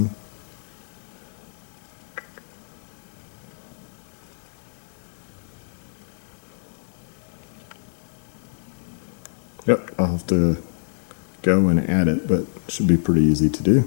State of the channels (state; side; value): silent; right; digital silence